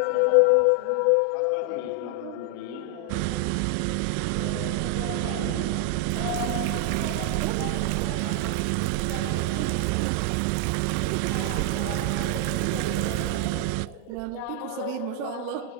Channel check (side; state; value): both; different; correlation 0.00